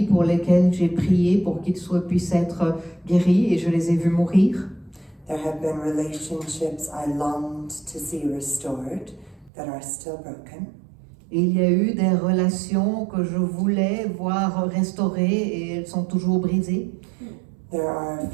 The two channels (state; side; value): drops out; left; at 9.5 s